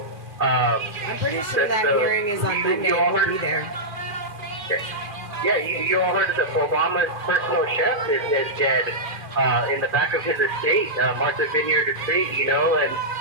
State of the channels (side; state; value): left; late; 2.4 ms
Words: I'm pretty sure that hearing is on Monday. I'll be there. Yeah, you all heard that Obama's personal chef is dead in the back of his estate, Martha Vineyard Estate, and